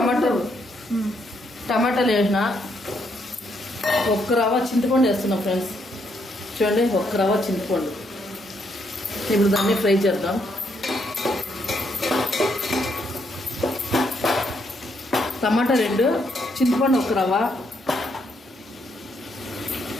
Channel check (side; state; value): both; normal; correlation 0.75